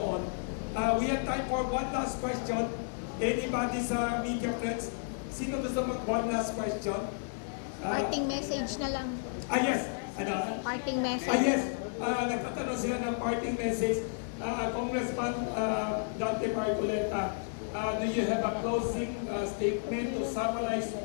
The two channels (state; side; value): silent; right; digital silence